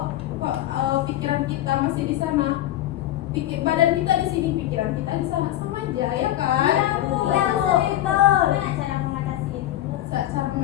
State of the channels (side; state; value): right; quieter; 13.7 dB